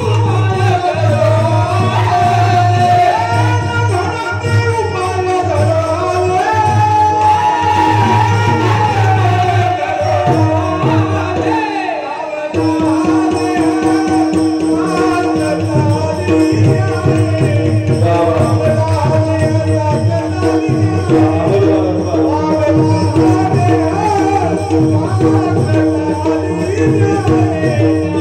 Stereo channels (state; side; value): identical; both; correlation 1.00